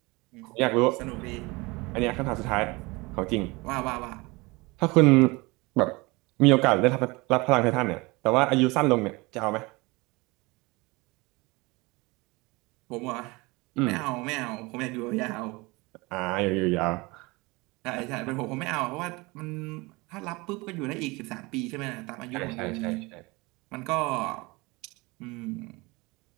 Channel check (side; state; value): left; quieter; 24.4 dB